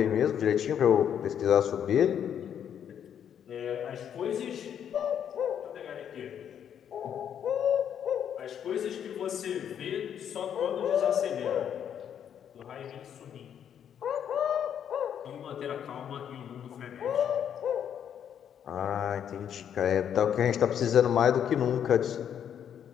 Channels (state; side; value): quieter; right; 8.9 dB